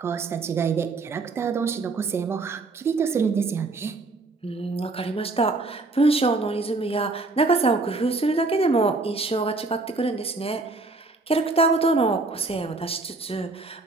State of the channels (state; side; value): quieter; left; 3.5 dB